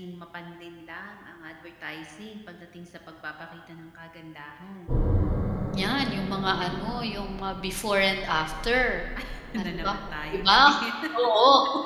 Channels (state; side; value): identical; both; correlation 1.00